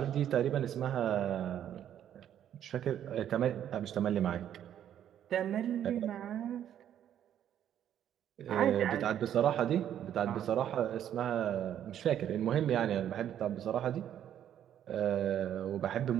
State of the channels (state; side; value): quieter; left; 10.3 dB